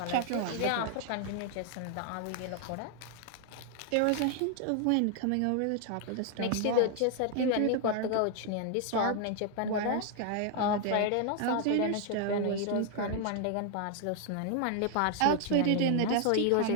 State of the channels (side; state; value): both; different; correlation 0.00